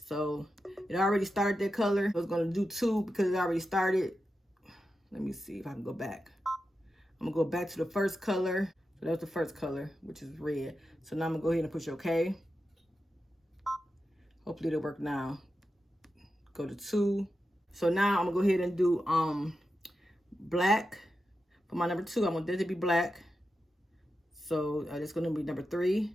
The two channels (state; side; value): normal; both; correlation 0.90